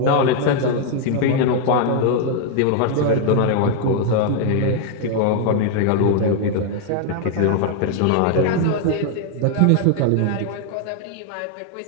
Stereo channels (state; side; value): different; both; correlation 0.00